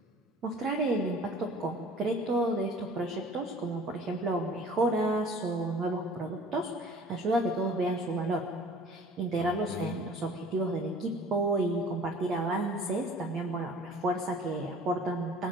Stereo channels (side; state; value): both; normal; correlation 0.48